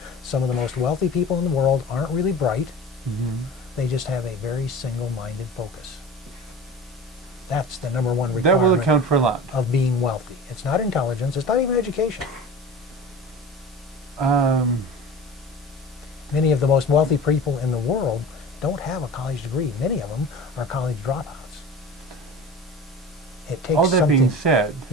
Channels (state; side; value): normal; both; correlation 0.36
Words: Some of the most wealthy people in the world aren't really bright. They just have a very single-minded focus. That's the number one requirement. That will account for a lot. Of being wealthy. It's not intelligence, it's not even education. Many of the most wealthy people in the world don't have a college degree. Many of them are college dropouts. It takes all that something. being said,